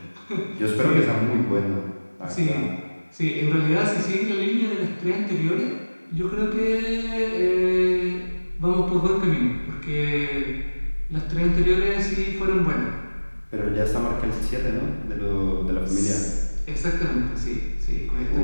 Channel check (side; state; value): both; inverted; correlation -1.00